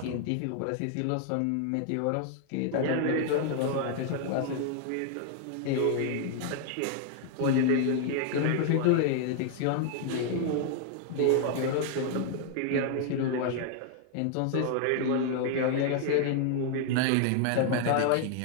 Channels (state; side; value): different; both; correlation 0.00